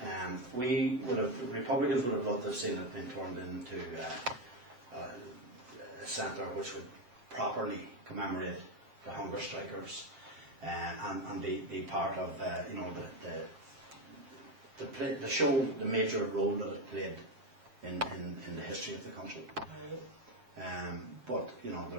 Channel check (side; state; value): left; late; 7.9 ms